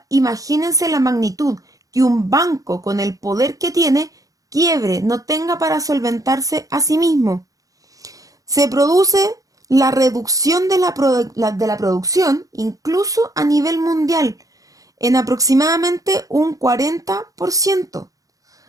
imagínense la magnitud que un banco con el poder que tiene quiebre, no tenga para solventarse a sí mismo. Se produce la reducción de la producción, incluso a nivel mundial, en aproximadamente un 40%.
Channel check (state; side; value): late; left; 0.17 ms